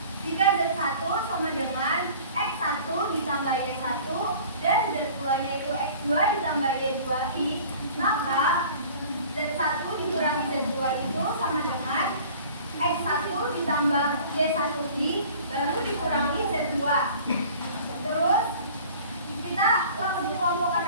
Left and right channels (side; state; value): both; inverted; correlation -0.46